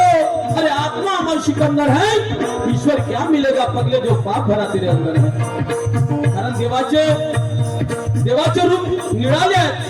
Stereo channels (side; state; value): both; identical; correlation 1.00